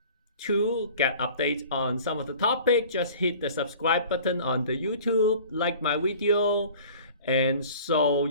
to get updates on some of the topic, just hit the subscribe button on the YouTube, like my video, and so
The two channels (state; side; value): inverted; both; correlation -0.45